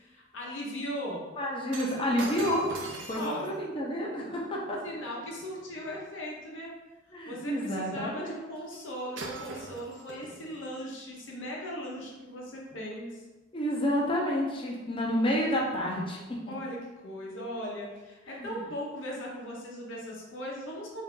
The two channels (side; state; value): both; normal; correlation 0.42